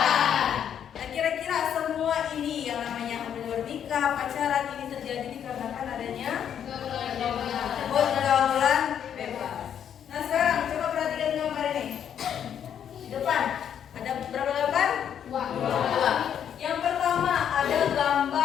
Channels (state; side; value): quieter; right; 9.0 dB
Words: Nah, kira-kira semua ini yang namanya hamil di luar nikah, pacaran ini terjadi dikarenakan adanya pergaulan bebas. Nah, sekarang coba perhatikan gambar ini. Di depan ada berapa gambar? Dua. Yang pertama ada